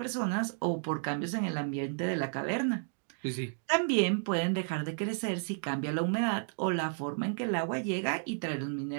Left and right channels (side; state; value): left; silent; 56 dB below the other